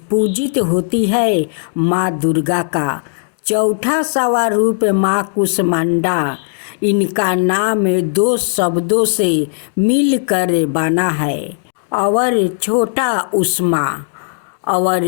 पूजित होती है माँ दुर्गा का चौथा स्वरूप माँ कुसमांडा। इनका नाम दो शब्दों से मिलकर बना है और छोटा उष्मा और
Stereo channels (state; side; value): silent; right; digital silence